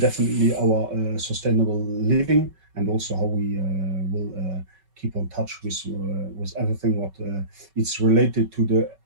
definitely our sustainable living, and also how we will keep on touch with everything what it's related to the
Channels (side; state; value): left; late; 5.3 ms